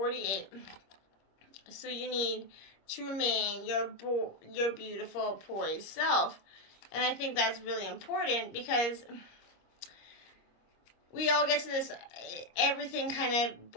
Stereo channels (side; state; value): right; late; 25 ms